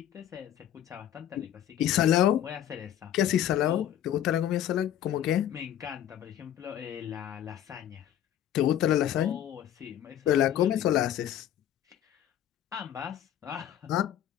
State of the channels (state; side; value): quieter; right; 11.0 dB